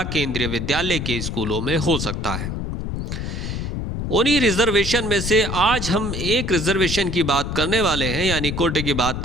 केंद्रीय विद्यालय के स्कूलों में हो सकता है। उन्हीं रिजर्वेशन में से आज हम एक रिजर्वेशन की बात करने वाले हैं, यानी कोटे की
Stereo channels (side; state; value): left; noise; rumble, 4 dB below the sound